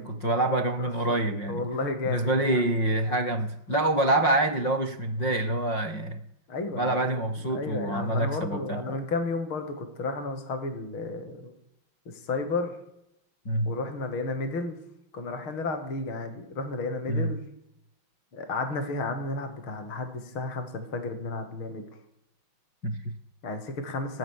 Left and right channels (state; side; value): late; right; 5.6 ms